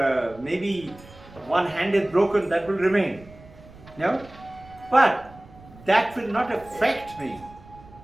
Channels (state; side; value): noise; right; rumble, 22 dB below the sound